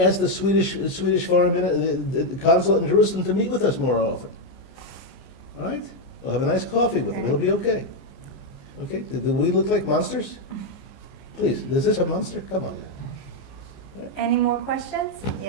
the Swedish foreign the consulate in Jerusalem to meet with us more often. All right? We'll have a nice coffee with them. It'll be okay. Okay? Do we look like monsters? Please, is this a monster? Come on. Any more questions?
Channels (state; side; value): late; right; 15 ms